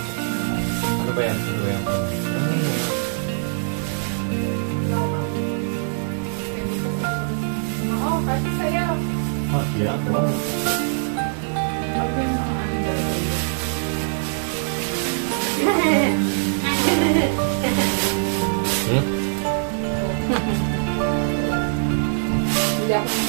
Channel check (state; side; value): silent; left; digital silence